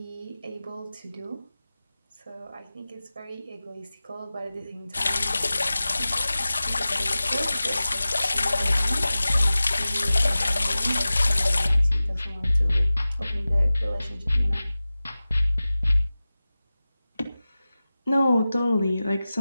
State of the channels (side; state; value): both; inverted; correlation -0.96